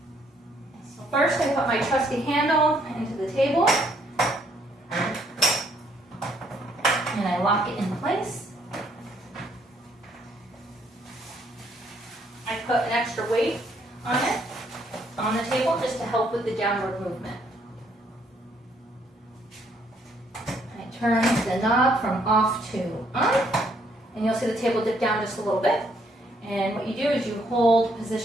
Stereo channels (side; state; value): both; normal; correlation 0.68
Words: So first I put my trusty handle into the table and I lock it in place. I put an extra weight on it, on the table, just to help with the downward movement. I turn the knob from off to on, and you'll see the table dip down just a little bit. And what you do is you hold